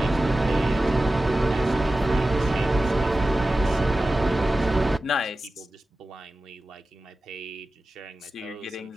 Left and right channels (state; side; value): normal; both; correlation 0.95